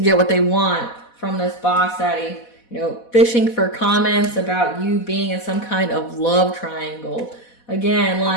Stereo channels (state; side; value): late; right; 4.1 ms